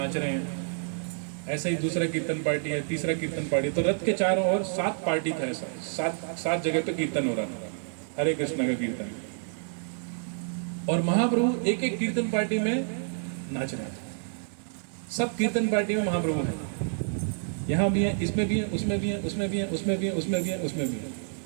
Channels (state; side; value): silent; left; 59 dB below the other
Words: रहे हैं। ऐसे ही दूसरा कीर्तन पार्टी है, तीसरा कीर्तन पार्टी। तो रथ के चारों ओर 7 पार्टी था, ऐसा 7 जगह पे कीर्तन हो रहा था, हरे कृष्ण का कीर्तन। और महाप्रभु एक एक कीर्तन पार्टी में नाच रहे हैं। सब कीर्तन पार्टी में महाप्रभु हैं, यहाँ भी हैं, इसमें भी हैं, उसमें भी हैं, उसमें भी हैं, उसमें भी हैं, उसमें भी हैं, उसमें भी